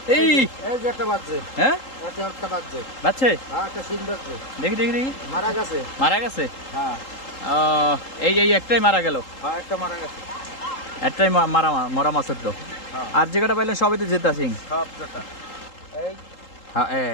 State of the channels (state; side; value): late; right; 3.8 ms